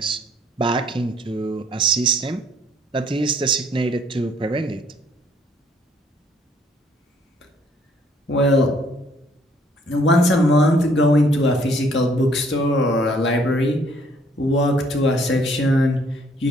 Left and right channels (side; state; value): both; normal; correlation 0.63